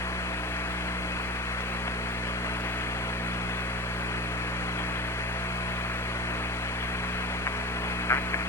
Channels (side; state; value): both; normal; correlation 0.31